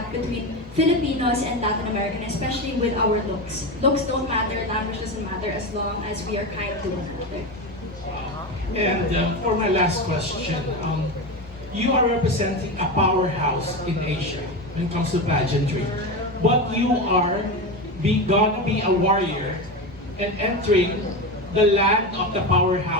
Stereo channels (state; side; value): normal; both; correlation 0.19